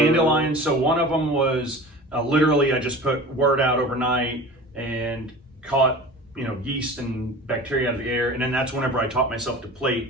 So one of them was literally I just put word out overnight and caught yeast and bacteria out of the air, and then that's whenever I taught myself to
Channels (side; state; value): both; normal; correlation 0.37